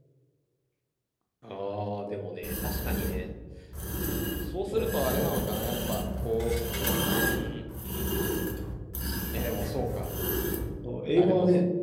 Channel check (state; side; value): identical; both; correlation 1.00